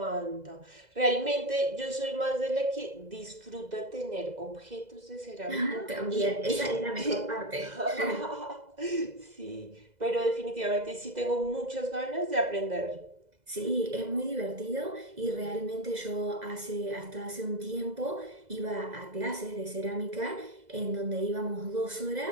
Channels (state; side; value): late; left; 2.0 ms